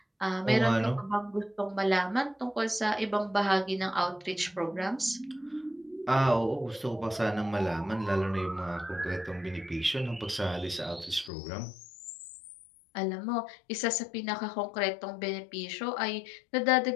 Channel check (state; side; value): drops out; right; at 11.3 s